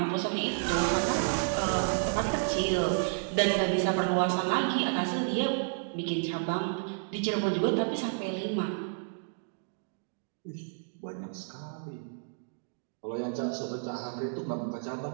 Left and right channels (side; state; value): left; silent; digital silence